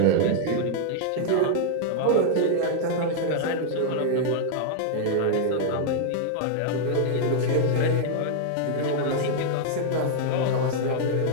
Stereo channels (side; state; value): both; different; correlation 0.00